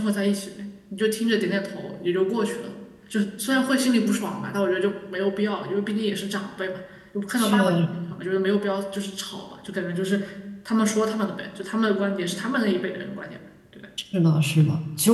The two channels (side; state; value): both; identical; correlation 1.00